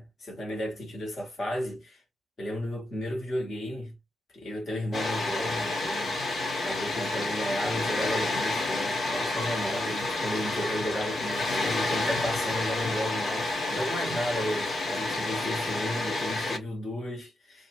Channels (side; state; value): both; normal; correlation 0.85